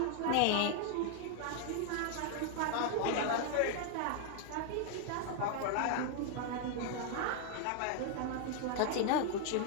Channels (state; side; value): different; both; correlation 0.00